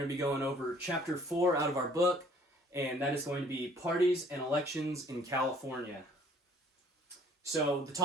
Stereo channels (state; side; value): normal; both; correlation 0.55